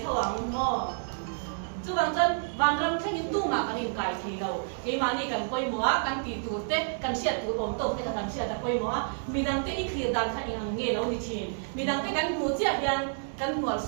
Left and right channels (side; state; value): left; silent; digital silence